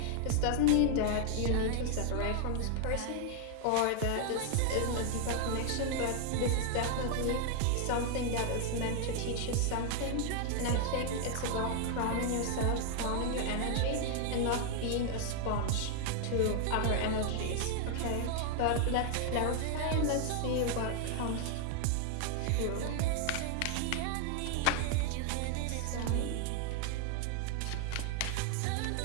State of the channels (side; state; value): both; different; correlation 0.00